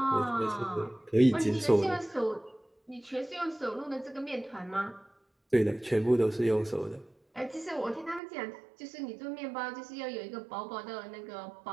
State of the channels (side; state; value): left; drops out; at 8.2 s